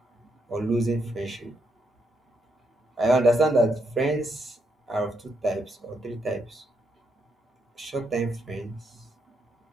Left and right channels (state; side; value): normal; both; correlation 0.78